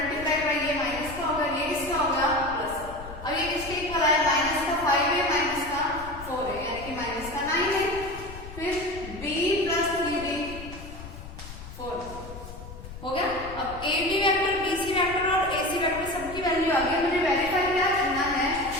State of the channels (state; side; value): noise; left; rumble, 13 dB below the sound